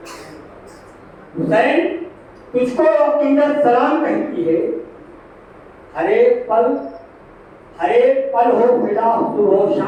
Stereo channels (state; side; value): identical; both; correlation 1.00